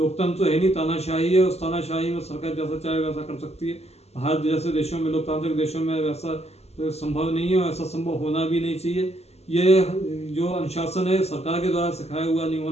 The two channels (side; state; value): right; late; 0.30 ms